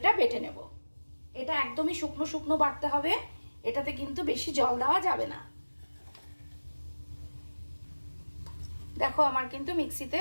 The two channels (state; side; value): inverted; both; correlation -1.00